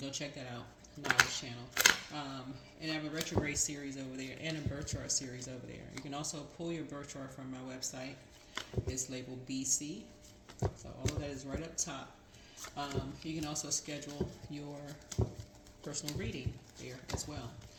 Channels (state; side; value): identical; both; correlation 1.00